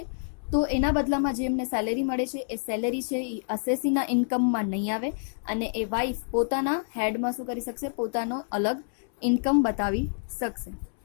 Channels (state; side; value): silent; right; 60 dB below the other